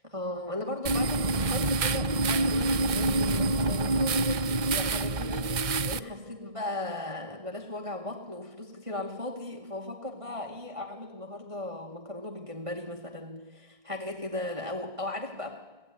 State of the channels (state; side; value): late; left; 1.6 ms